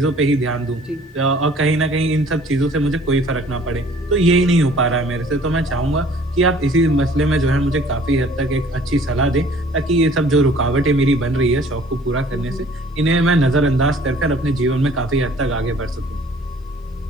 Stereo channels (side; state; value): both; normal; correlation 0.53